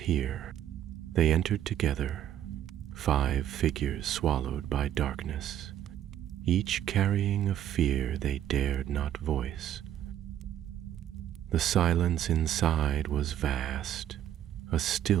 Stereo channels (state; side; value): quieter; left; 11.2 dB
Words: They entered together, 5 figures swallowed by darkness, each carrying a fear they dared not voice. The silence inside was vast, a